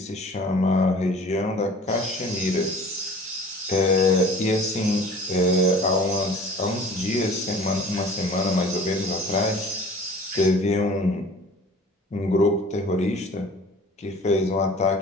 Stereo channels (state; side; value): normal; both; correlation 0.46